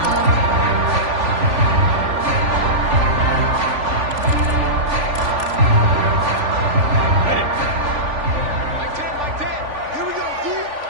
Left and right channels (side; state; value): left; late; 3.5 ms